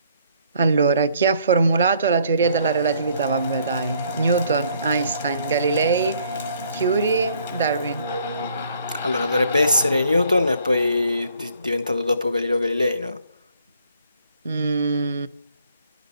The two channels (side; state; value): both; inverted; correlation -0.64